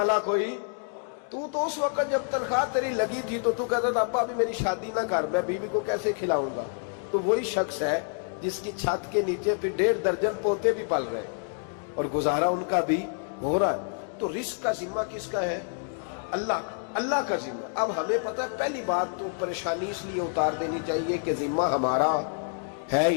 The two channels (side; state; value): right; silent; 58 dB below the other